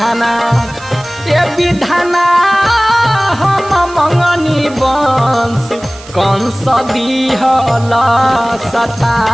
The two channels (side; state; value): right; noise; hiss, 19 dB below the sound